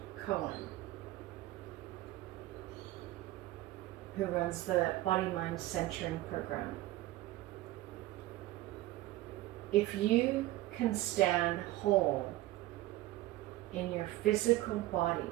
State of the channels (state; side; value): quieter; left; 16.7 dB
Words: Cohen, who runs the Body Mind Centering program. If you can stand whole in your physical body.